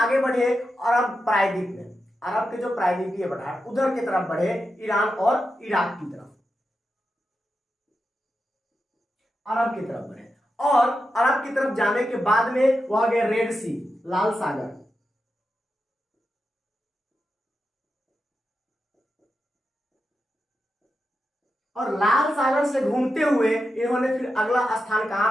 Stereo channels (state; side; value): normal; both; correlation 0.88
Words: बढ़े अरब प्रायद्वीप में, अरब के जो प्रायद्वीपीय पठार उधर की तरफ बढ़े, ईरान और इराक की तरफ, अरब की तरफ बढ़े। और अरब की तरफ जाने के बाद में वह गए रेड सी, लाल सागर। और लाल सागर से घूमते हुए इन्होंने फिर अगला स्थान